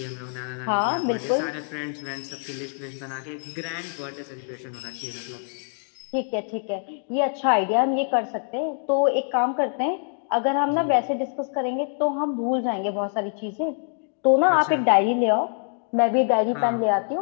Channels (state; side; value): silent; right; 57 dB below the other